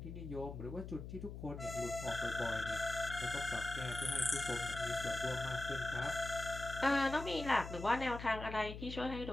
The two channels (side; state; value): left; noise; hum, 9 dB below the sound